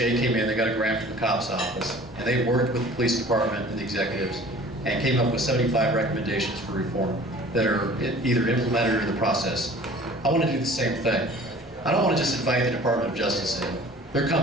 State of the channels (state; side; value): normal; both; correlation 0.47